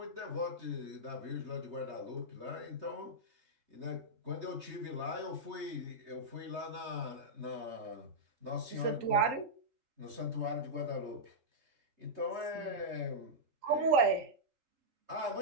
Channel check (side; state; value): left; late; 3.2 ms